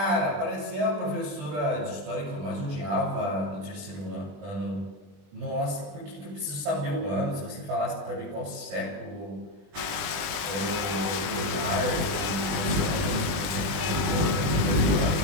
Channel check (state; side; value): late; left; 20 ms